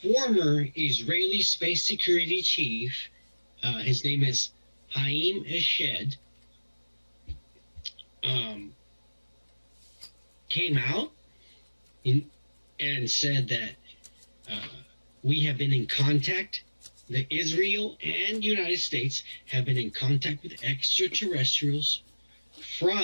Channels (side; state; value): both; inverted; correlation -1.00